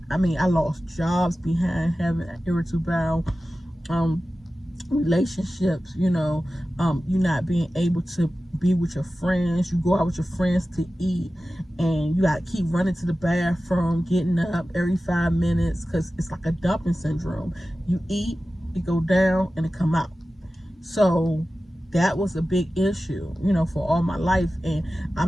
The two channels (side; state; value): both; normal; correlation 0.95